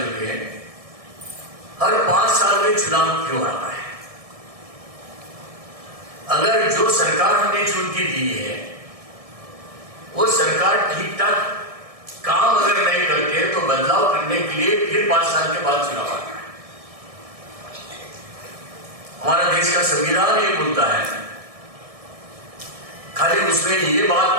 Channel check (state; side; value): late; left; 1.7 ms